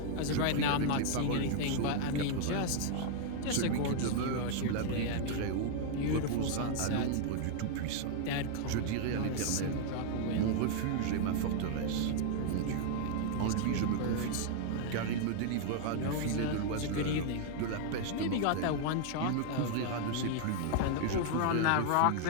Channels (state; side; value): different; both; correlation 0.00